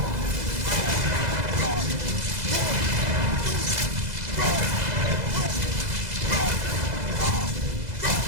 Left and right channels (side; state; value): left; late; 2.0 ms